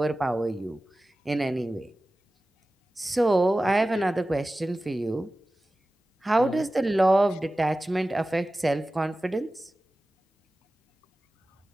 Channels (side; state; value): both; normal; correlation 0.96